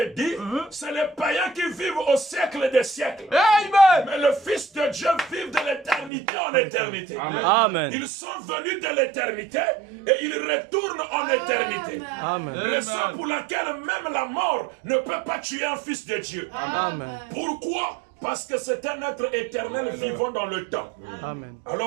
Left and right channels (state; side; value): drops out; left; at 6.1 s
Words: dit, c'est les païens qui vivent au siècle des siècles. Amen. Mais le Fils de Dieu vit de l'éternité en éternité. Amen. Ils sont venus de l'éternité et ils retournent en éternité. Amen. Raison pour laquelle même la mort ne peut pas tuer un fils de Dieu. Amen. Pourquoi? Parce que c'est un être éternel vivant dans le temps. Amen.